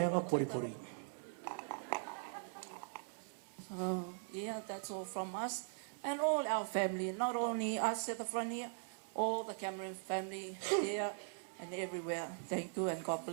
ama pori. That's all from us and all our family, not only us at the front here, all the Cameron family here and everywhere. Thank you and God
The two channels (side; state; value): left; silent; 50 dB below the other